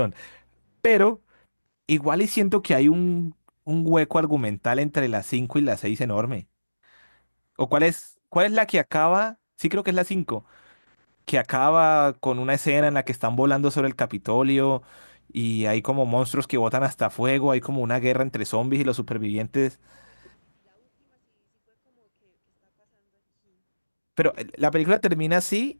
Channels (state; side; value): inverted; both; correlation -1.00